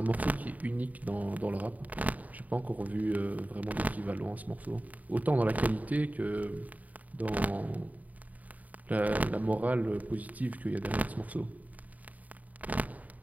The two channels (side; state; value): left; late; 0.074 ms